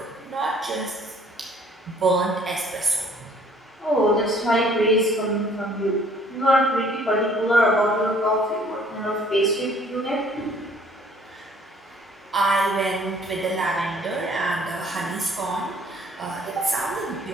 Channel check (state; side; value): normal; both; correlation 0.58